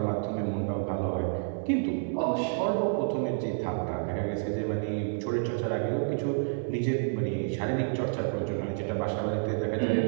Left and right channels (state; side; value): silent; left; digital silence